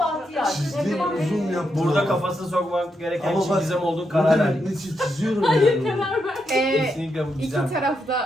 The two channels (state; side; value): normal; both; correlation 0.82